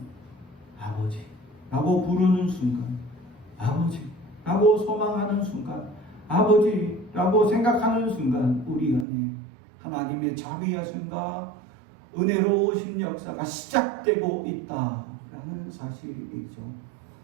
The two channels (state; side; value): drops out; left; at 9.1 s